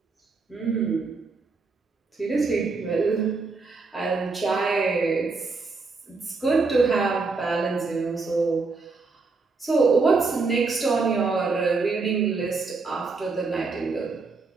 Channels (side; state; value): left; quieter; 4.1 dB